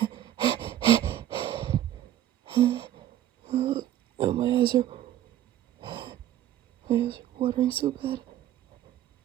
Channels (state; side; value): quieter; left; 12.2 dB